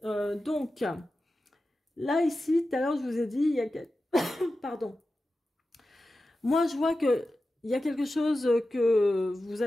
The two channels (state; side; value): normal; both; correlation 0.93